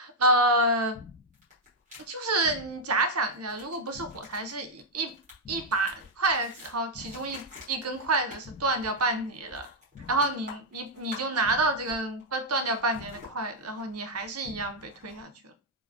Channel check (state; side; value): normal; both; correlation -0.01